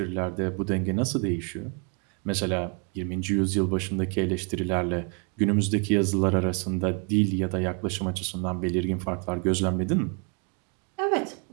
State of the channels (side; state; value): left; quieter; 36.4 dB